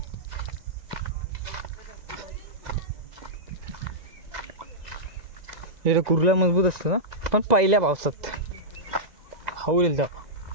हे कुर्ला मजबूत असतं ना पण पहिल्या पावसात हवलेल तेव्हा.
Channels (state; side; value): late; left; 2.0 ms